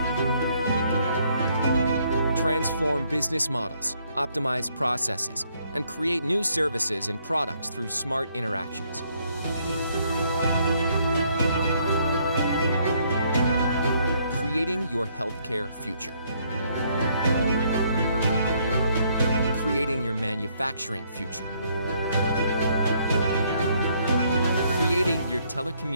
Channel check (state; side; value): inverted; both; correlation -0.69